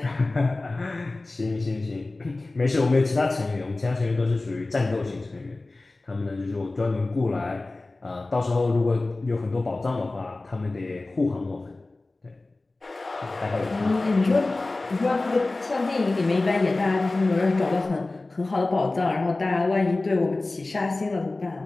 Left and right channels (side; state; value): right; quieter; 3.1 dB